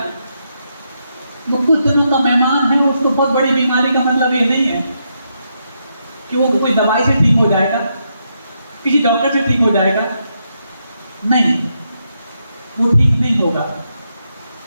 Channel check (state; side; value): inverted; both; correlation -0.81